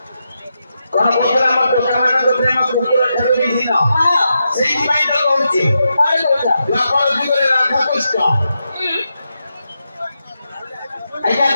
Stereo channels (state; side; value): inverted; both; correlation -0.86